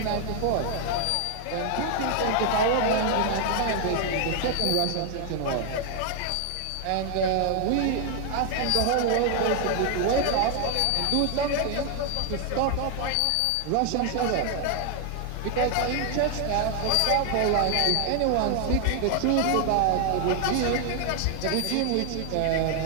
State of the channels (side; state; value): both; different; correlation 0.00